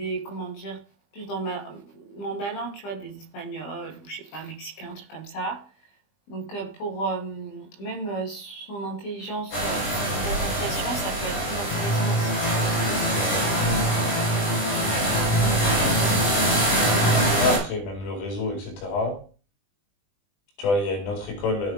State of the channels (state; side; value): late; right; 20 ms